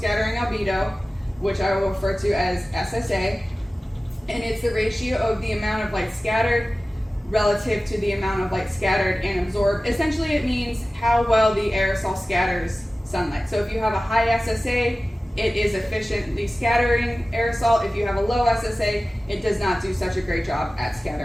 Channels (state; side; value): normal; both; correlation 0.96